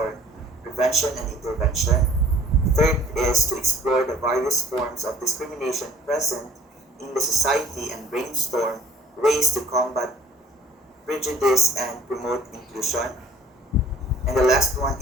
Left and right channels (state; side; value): normal; both; correlation 0.53